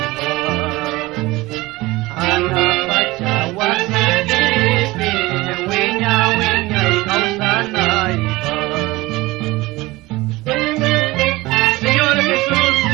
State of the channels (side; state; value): left; quieter; 20.5 dB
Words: Ana pachawasilipe wiña wiña ikausanay Señor Jesús